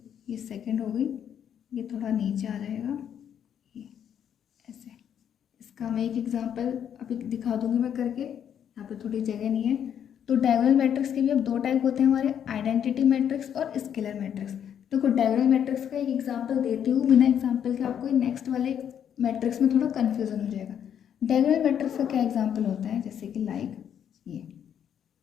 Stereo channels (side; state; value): right; quieter; 9.0 dB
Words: ये सेकंड हो गई, ये थोड़ा नीचे आ जाएगा, ये ऐसे। इसका मैं एक एग्जांपल अभी दिखा दूंगी मैं करके, यहाँ पे थोड़ी जगह नहीं है। तो डायगोनल मैट्रिक्स के भी अब दो टाइप होते हैं हमारे, आइडेंटिटी मैट्रिक्स और स्केलर मैट्रिक्स। देखो डायगोनल मैट्रिक्स का एक एग्जांपल देती हूँ, बिना एग्जांपल के आपको नेक्स्ट वाले मैट्रिक्स में थोड़ा कन्फ्यूजन हो जाएगा। डायगोनल मैट्रिक्स का क्या एग्जाम्पल होता है, जैसे कि लाइक ये